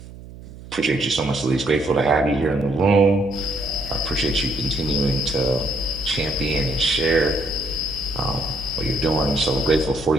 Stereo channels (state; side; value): noise; right; hum, 16 dB below the sound